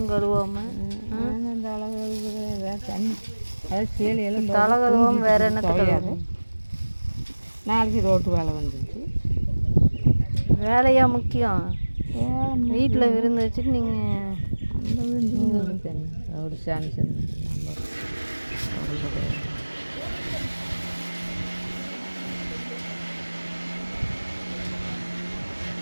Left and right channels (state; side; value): inverted; both; correlation -1.00